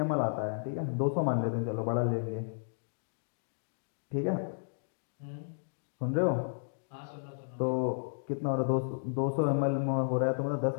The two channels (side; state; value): right; silent; digital silence